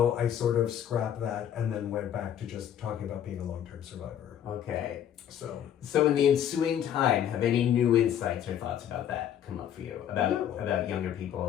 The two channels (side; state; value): right; quieter; 9.9 dB